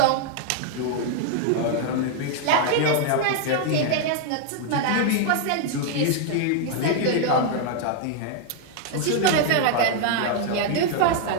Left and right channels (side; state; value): both; different; correlation 0.00